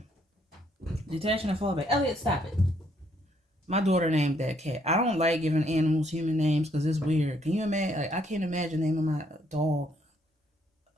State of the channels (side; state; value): both; normal; correlation 0.69